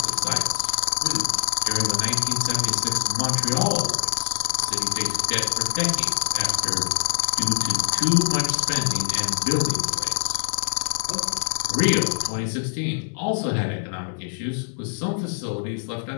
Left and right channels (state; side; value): silent; right; 63 dB below the other